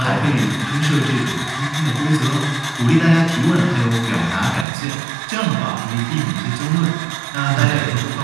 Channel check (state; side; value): drops out; left; at 4.7 s